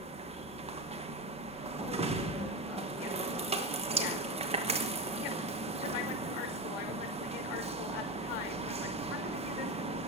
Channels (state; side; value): normal; both; correlation 0.17